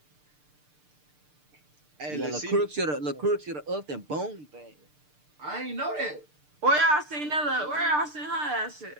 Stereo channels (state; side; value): late; left; 6.7 ms